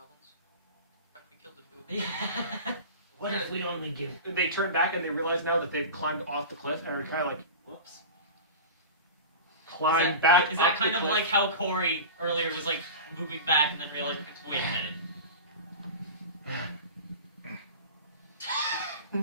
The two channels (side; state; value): both; inverted; correlation -0.31